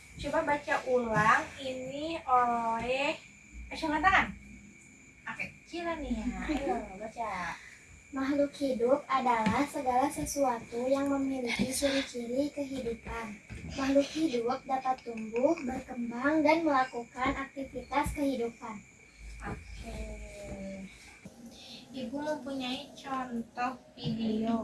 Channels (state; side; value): identical; both; correlation 1.00